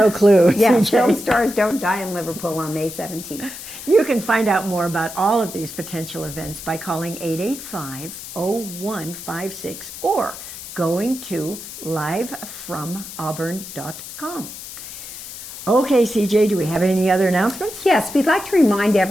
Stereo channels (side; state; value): left; noise; hiss, 12 dB below the sound